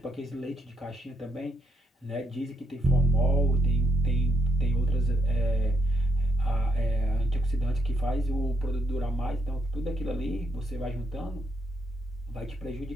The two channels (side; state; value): both; normal; correlation 0.76